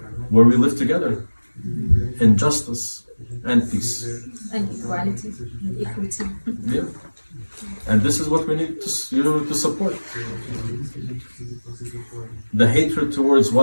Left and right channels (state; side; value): inverted; both; correlation -1.00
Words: where we live together in justice and peace. And equality and equity. Yeah. And this is what we need to support. The hatred towards